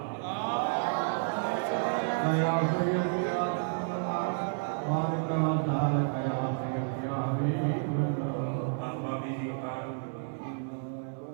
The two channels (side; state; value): left; silent; 57 dB below the other